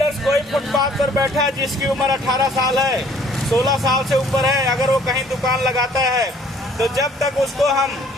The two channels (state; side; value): normal; both; correlation 0.58